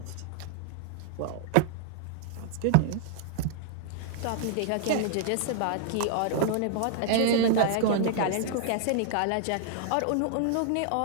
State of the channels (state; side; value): different; both; correlation -0.01